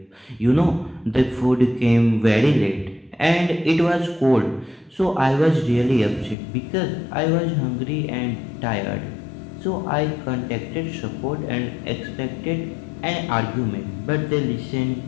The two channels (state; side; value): drops out; right; at 6.4 s